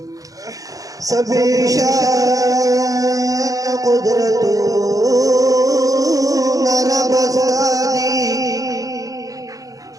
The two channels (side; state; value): left; late; 0.17 ms